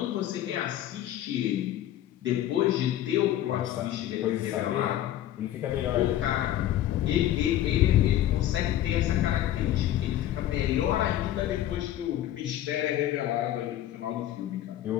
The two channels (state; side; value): quieter; right; 12.6 dB